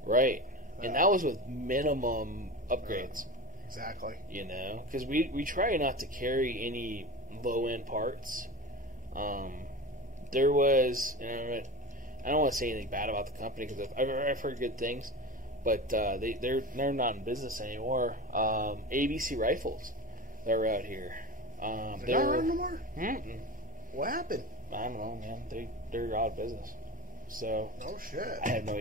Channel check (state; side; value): normal; both; correlation 0.26